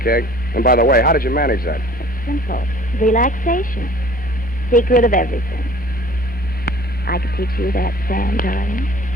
And by the way, how did you manage that? It's simple. Relaxation. Secret of everything. I could teach you that, Sam, darling.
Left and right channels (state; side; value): normal; both; correlation 0.49